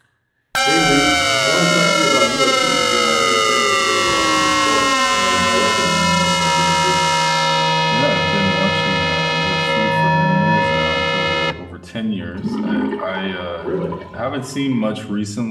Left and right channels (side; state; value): both; identical; correlation 1.00